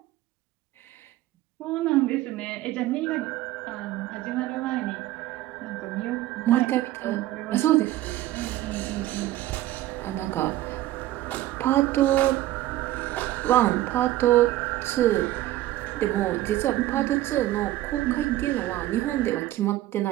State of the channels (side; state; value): left; quieter; 15.2 dB